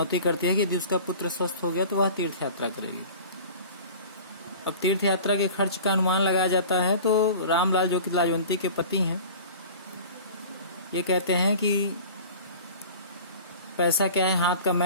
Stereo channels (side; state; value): both; inverted; correlation -0.41